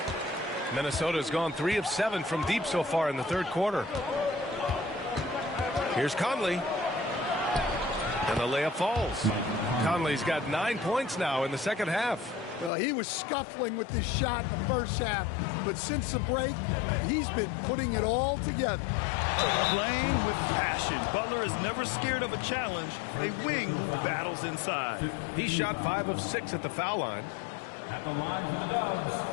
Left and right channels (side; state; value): right; drops out; at 12.7 s